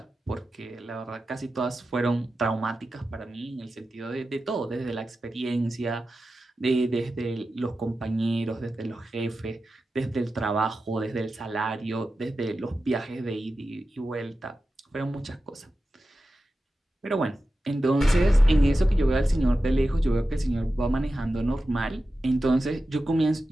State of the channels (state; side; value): normal; both; correlation 0.93